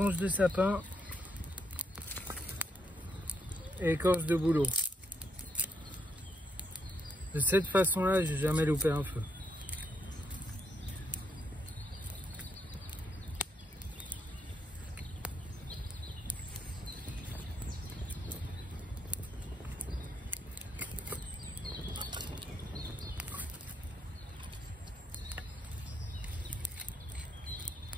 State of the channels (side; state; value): both; normal; correlation 0.76